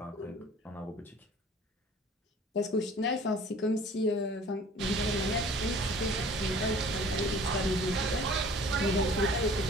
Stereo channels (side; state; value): both; normal; correlation 0.49